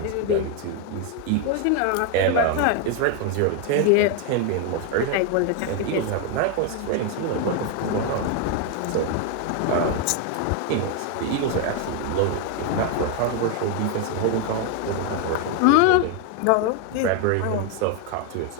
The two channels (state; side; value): different; both; correlation 0.01